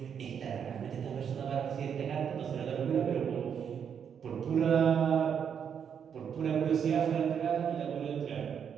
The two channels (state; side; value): quieter; left; 7.7 dB